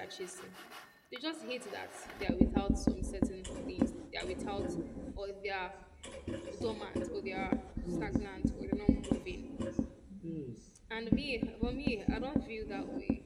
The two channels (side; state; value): both; identical; correlation 1.00